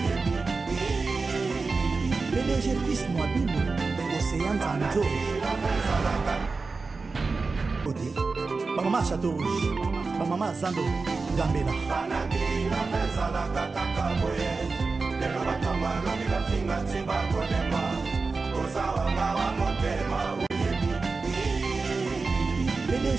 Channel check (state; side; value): quieter; left; 4.1 dB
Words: PDG Pis Mwabibu, Océan Zanzo. Maman Château Rouge, maman Zando, Gambela.